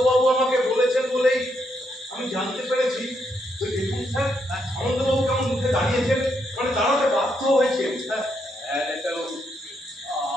আমাকে বলেছেন বলেই আমি জানতে পেরেছি। তো দেখুন স্যার, সামন্তবাবু কেমন মুখে দাঁড়িয়েছেন, মানে দাঁড়াতে বাধ্য হয়েছেন।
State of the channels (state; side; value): normal; both; correlation 0.78